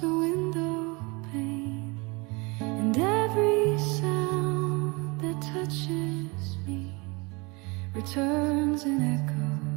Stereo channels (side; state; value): left; quieter; 27.5 dB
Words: the window pane, and every sound that touches me returns an echo